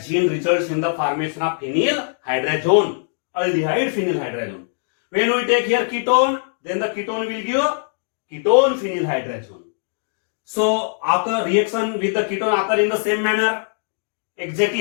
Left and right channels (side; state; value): right; silent; digital silence